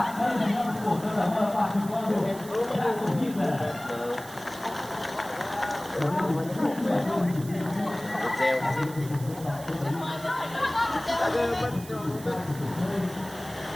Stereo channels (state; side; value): noise; right; hiss, 16 dB below the sound